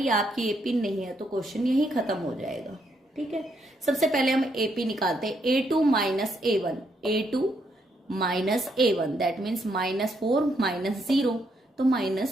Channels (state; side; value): normal; both; correlation 0.75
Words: आपकी एपी नहीं है तो क्वेश्चन यही खत्म हो जाएगा, ठीक है। सबसे पहले हम एपी निकालते हैं। A2 - A1 A2 - A1 that means -4 - 0 तो